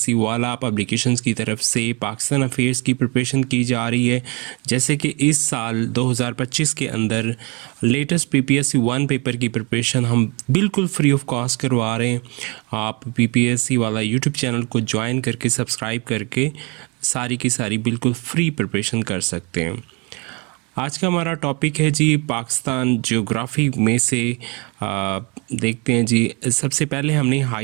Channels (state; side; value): quieter; left; 29.9 dB